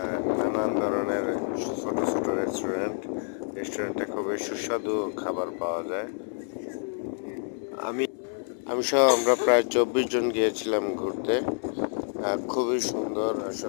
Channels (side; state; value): right; silent; 57 dB below the other